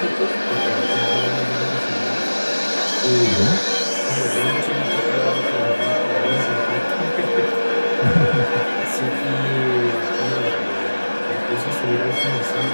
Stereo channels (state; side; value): inverted; both; correlation -1.00